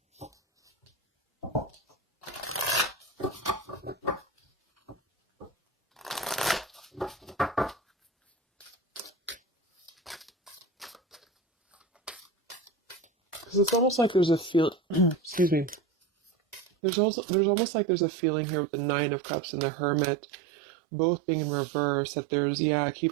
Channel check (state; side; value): drops out; left; at 16.7 s